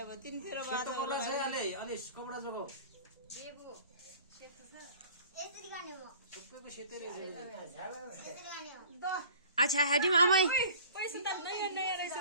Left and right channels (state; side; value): inverted; both; correlation -0.46